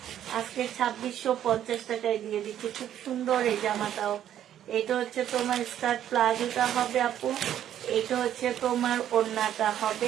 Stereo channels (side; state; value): left; quieter; 10.8 dB